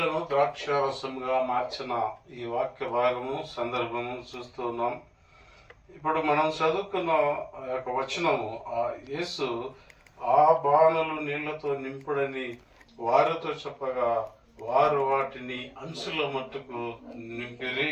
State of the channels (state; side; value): identical; both; correlation 1.00